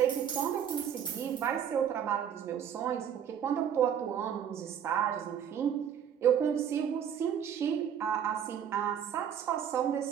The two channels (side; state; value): left; quieter; 8.7 dB